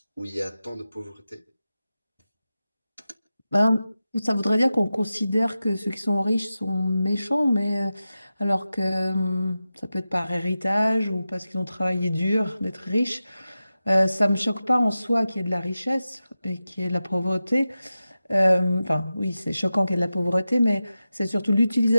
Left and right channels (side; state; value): both; inverted; correlation -0.93